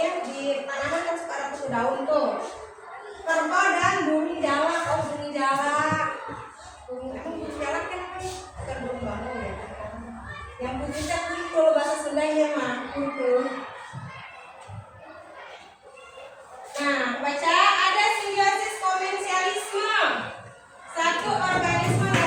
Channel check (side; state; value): both; identical; correlation 1.00